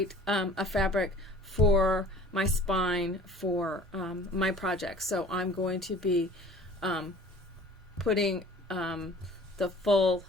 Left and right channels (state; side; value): normal; both; correlation 0.47